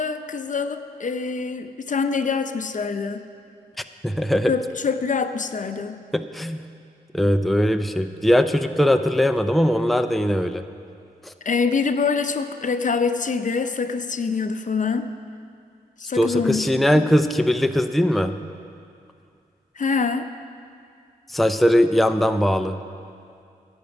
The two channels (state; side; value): normal; both; correlation 0.81